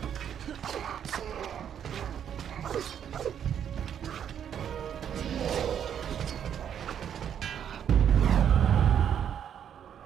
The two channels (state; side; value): quieter; left; 8.9 dB